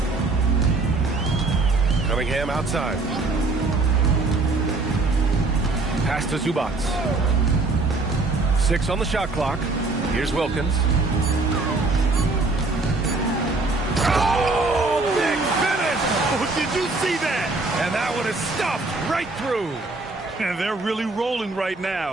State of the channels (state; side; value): quieter; left; 3.4 dB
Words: Cunningham outside. Pass to Zubac. 6 on the shot clock. Here's Wilkins. Oh, big finish! Oh, did you see that? And that one is stuffed right through. And they're really rolling right